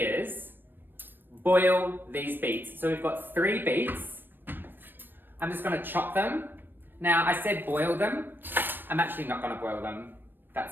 boil these beets. So we've got 3 beets. I'm just going to chop them. Now I said boil them. I'm actually not going to boil them.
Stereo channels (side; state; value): left; late; 0.095 ms